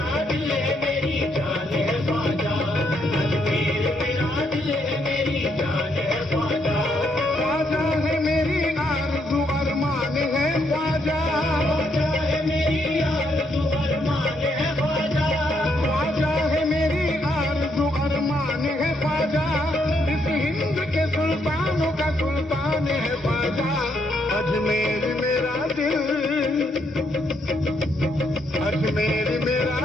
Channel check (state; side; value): normal; both; correlation 0.75